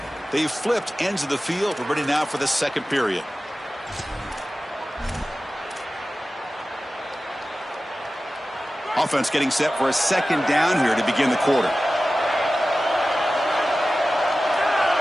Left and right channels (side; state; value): both; normal; correlation 0.95